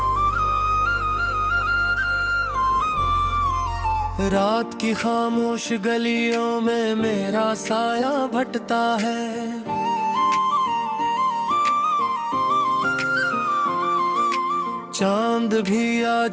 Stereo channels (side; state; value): both; identical; correlation 1.00